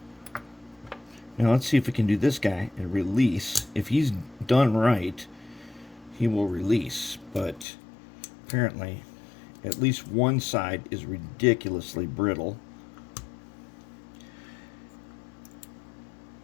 Now let's see if we can do this guy and release. If he's done right, he will release. But apparently, at least one side is ridiculously brittle.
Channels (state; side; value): drops out; right; at 7.7 s